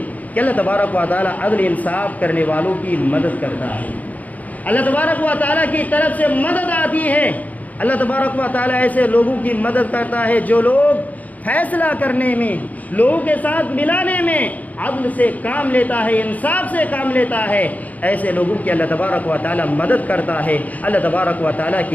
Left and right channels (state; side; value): late; right; 0.076 ms